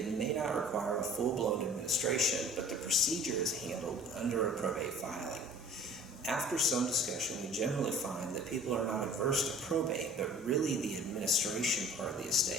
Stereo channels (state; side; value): normal; both; correlation 0.46